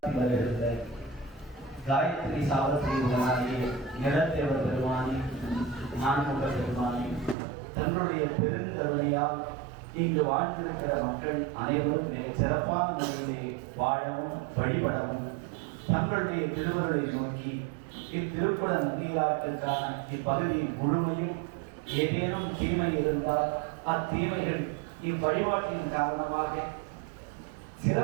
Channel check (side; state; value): left; drops out; at 7.4 s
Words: காயத்ரி சாவத்ரி உடனாலே நிலத்தேவர் பெருமானி நான்முக பெருமானி தன்னுடைய பெருங்கருணையால் இங்கு வாழ்ந்திருக்கிற மக்கள் அனைவரும் மிக சிறப்பான முறையிலே வாழவும் வழிபடவும் தங்களுடைய திருவருளை நோக்கி இத்திருக்குட நம்பியாற்றுக்கான இப்பகுதியின் முழுமையும் ஏதேனும் தீமை இருந்தால் அத்தீமைகள் இவ்வழிபாட்டின் காரணமாக